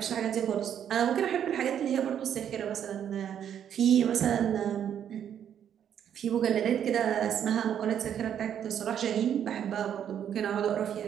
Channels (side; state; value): left; quieter; 9.3 dB